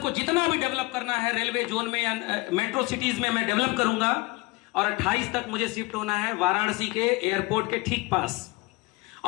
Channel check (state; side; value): quieter; right; 23.3 dB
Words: जितना भी डेवलप करना है रेलवे जोन में या मेट्रो सिटीज में मैं डेवलप करूंगा। और 28 तक मुझे शिफ्ट होना है वाराणसी के एयरपोर्ट के ठीक पास।